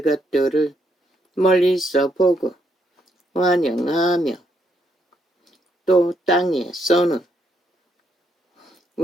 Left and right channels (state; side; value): normal; both; correlation 0.75